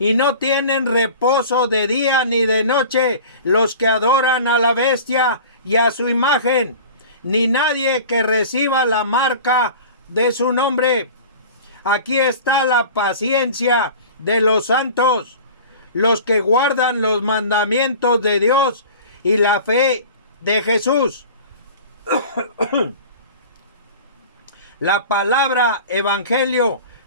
no tienen reposo de día ni de noche los que adoran a la bestia y a su imagen, ni nadie que reciba la marca de su nombre. Aquí está la paciencia de los santos, los que guardan los mandamientos de Dios y la fe de Jesús. La palabra evangelio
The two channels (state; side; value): inverted; both; correlation -0.40